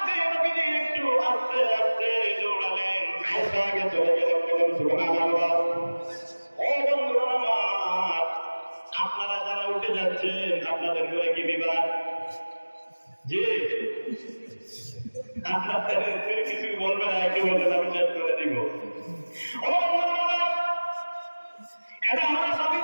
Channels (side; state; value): both; inverted; correlation -1.00